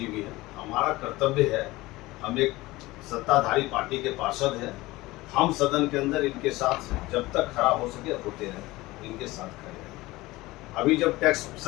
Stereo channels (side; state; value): right; quieter; 19.7 dB